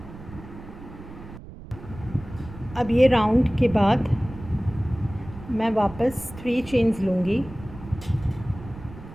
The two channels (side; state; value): right; noise; rumble, 15 dB below the sound